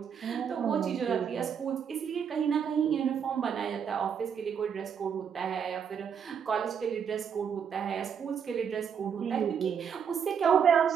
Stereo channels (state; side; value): quieter; left; 7.5 dB